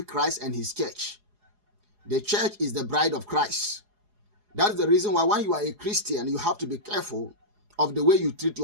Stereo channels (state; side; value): late; left; 4.8 ms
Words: Christ and his church. The church is the bride of Christ. That's the reason why when you are a Christian, you have to be careful of the way you treat